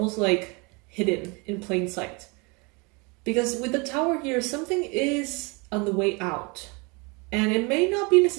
like hidden in plain sight. Because with the Tower here, something is on the way out. And it may not be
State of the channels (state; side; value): quieter; left; 29.1 dB